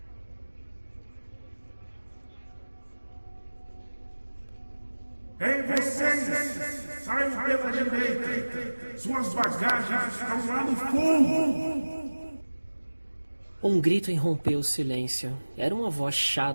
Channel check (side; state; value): both; inverted; correlation -1.00